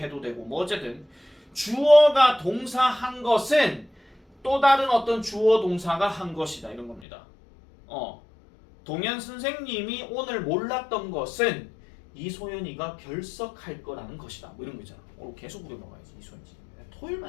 되고 뭐 어쨌든 주어가 동사한 것은 또 다른 어떤 주어 동사가 한 것이다 이런 겁니다. 동현 선생님이 오늘 몰랐던 것은 이소연이가 결석할 거라는 것이다. 뭐 이런 거 있잖아. 오늘 계속 우려 먹어야지 이소연이.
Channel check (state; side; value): drops out; right; at 7.1 s